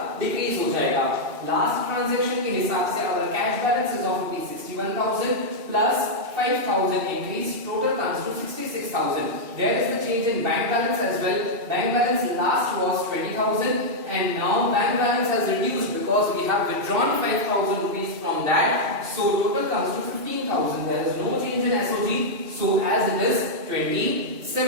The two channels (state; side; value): late; left; 2.7 ms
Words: डिक्रीज हो जाएगा. लास्ट ट्रांजैक्शन के हिसाब से अगर cash balance is of 61,000 plus 5,000 increase, total comes to 66,000. There is the change in bank balance as well. Bank balance last was 20,000 and now bank balance has reduced because we have withdrawn 5,000 rupees from that, so total comes to 15,000. there is no change in SOG, so as it is